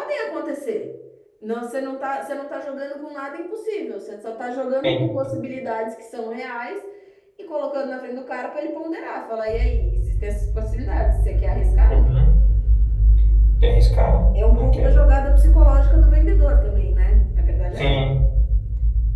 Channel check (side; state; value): both; identical; correlation 1.00